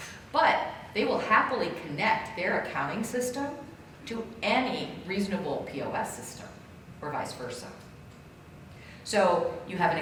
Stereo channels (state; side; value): identical; both; correlation 1.00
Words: But they will happily connect their accounting system to any reasonable POS system, or vice versa. So you have an